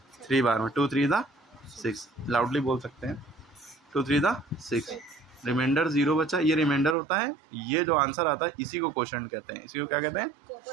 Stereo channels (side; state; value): left; drops out; at 7.0 s